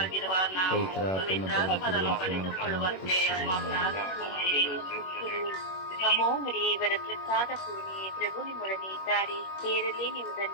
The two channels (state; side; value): late; right; 21 ms